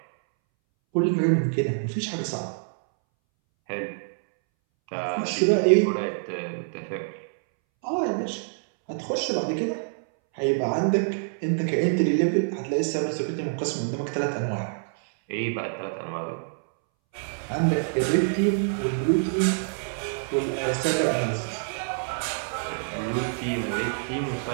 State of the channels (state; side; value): silent; left; 61 dB below the other